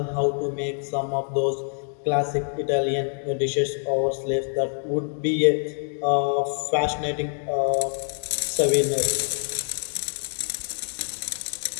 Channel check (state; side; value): silent; right; digital silence